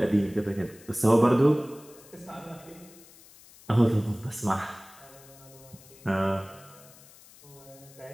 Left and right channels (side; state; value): left; noise; hiss, 23 dB below the sound